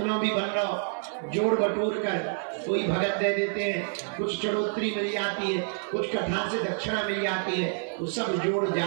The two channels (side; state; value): left; silent; digital silence